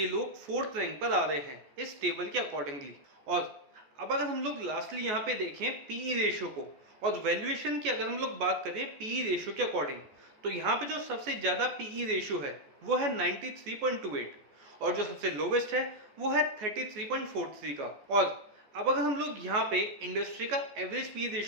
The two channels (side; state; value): left; late; 14 ms